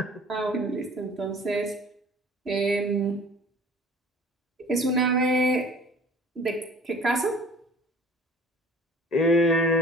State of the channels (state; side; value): normal; both; correlation 0.47